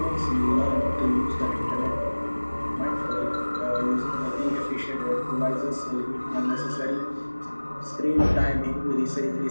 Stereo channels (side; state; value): both; inverted; correlation -1.00